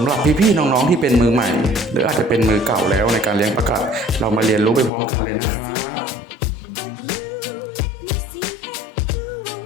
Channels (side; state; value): right; drops out; at 4.9 s